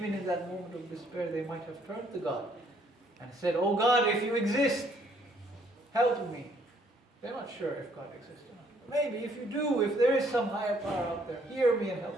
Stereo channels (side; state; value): both; normal; correlation 0.65